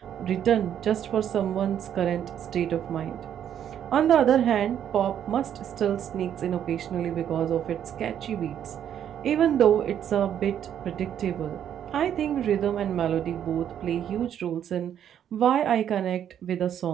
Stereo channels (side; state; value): left; quieter; 9.7 dB